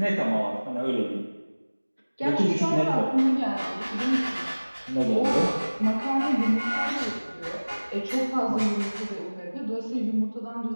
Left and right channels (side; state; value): both; inverted; correlation -1.00